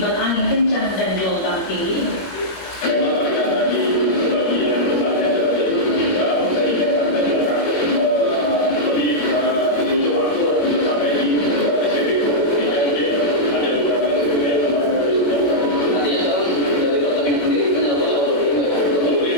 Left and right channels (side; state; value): right; late; 21 ms